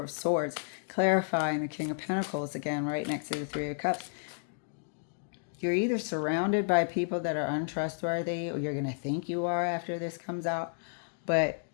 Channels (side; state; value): right; silent; digital silence